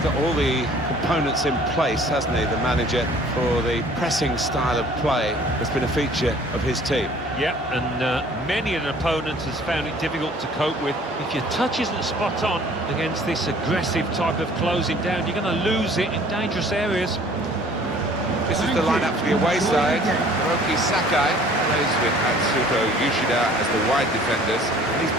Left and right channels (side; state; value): both; normal; correlation 0.53